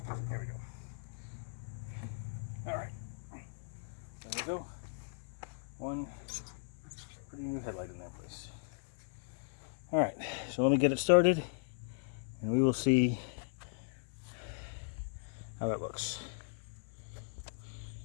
There we go. All right. There we go. One pretty new headlight in that place. All right. So let me get it started, and we will see how it looks.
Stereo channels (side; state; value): right; silent; 53 dB below the other